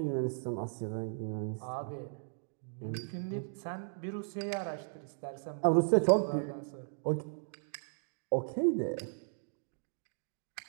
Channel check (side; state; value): left; silent; digital silence